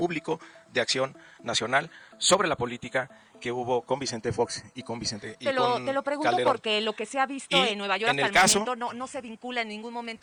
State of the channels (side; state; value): both; identical; correlation 1.00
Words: de Acción Nacional sobre la política que hubo con Vicente Fox y con Vicente y te lo pregunto Calderón. Porque lo que se ha visto en Nueva York hasta el momento no se vincula en ningún